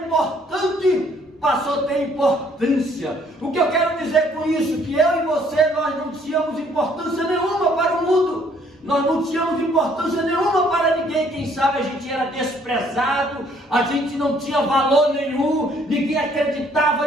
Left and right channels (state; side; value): normal; both; correlation 0.63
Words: importante passou a ter importância. O que eu quero dizer com isso? Que eu e você, nós não tínhamos importância nenhuma para o mundo. Nós não tínhamos importância nenhuma para ninguém. Quem sabe a gente era desprezado, a gente não tinha valor nenhum, ninguém